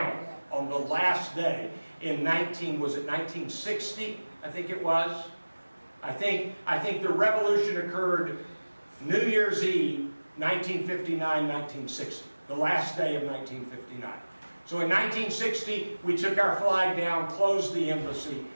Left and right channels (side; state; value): both; inverted; correlation -1.00